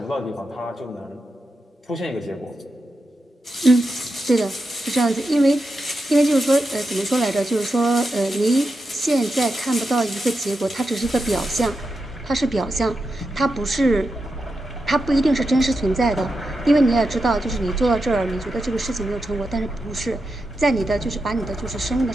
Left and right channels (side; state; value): both; normal; correlation 0.88